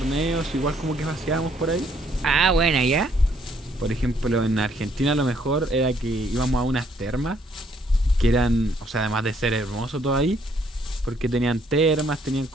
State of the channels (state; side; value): normal; both; correlation 0.67